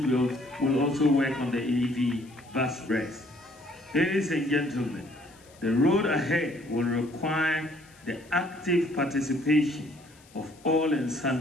will also work on the EV bus rest. Ladies and gentlemen, the road ahead will require the active participation of all and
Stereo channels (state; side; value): noise; left; hiss, 27 dB below the sound